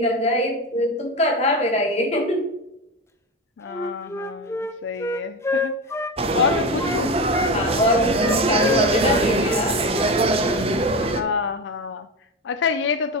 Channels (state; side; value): normal; both; correlation 0.21